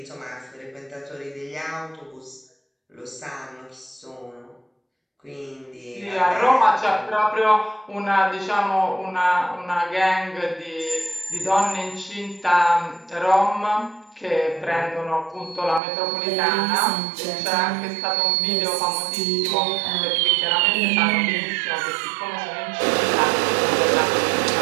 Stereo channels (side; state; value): left; drops out; at 15.8 s